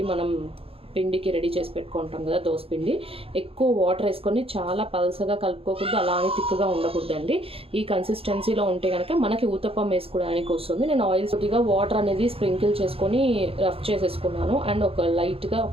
మనం పిండికి రెడీ చేసి పెట్టుకుంటాం కదా, దోశ పిండి ఎక్కువ వాటర్ వేసుకొని చాలా పల్సగా కలుపుకోకూడదు, అలానే తిక్కుగా ఉండకూడదండి. ఈ కన్సిస్టెన్సీలో ఉంటే కనుక మనకి ఊతప్పం వేసుకోవడానికి వస్తుంది. నేను ఆయిల్ కొద్దిగా వాటర్ అనేది స్ప్రింకిల్ చేసుకొని రఫ్ చేసేసుకున్నాను అండ్ ఒక లైట్గా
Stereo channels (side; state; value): left; late; 0.27 ms